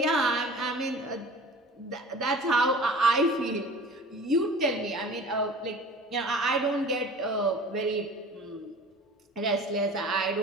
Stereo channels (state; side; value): normal; both; correlation 0.41